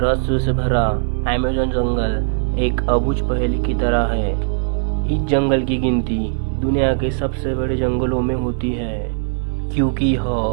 से भरा अमेज़न जंगल एक अबूझ पहेली की तरह है। इस जंगल की गिनती दुनिया के सबसे बड़े जंगलों में होती है, क्योंकि यह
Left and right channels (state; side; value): silent; left; 65 dB below the other